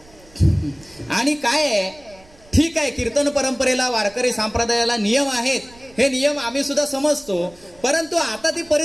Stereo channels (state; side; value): noise; right; rumble, 25 dB below the sound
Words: आणि काय आहे, ठीक आहे, कीर्तन परंपरेला, वारकरी संप्रदायाला नियम आहेत, हे नियम आम्ही सुद्धा समजतो. परंतु आता ती